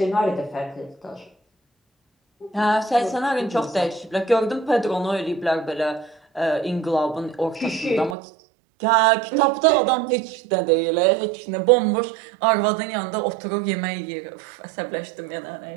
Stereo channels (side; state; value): left; drops out; at 8.2 s